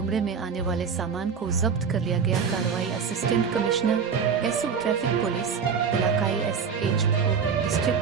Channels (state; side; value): quieter; left; 6.3 dB